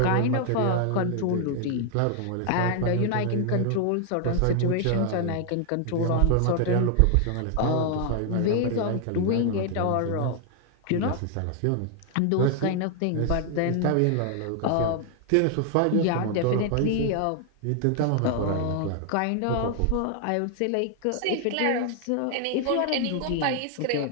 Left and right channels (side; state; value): both; different; correlation 0.00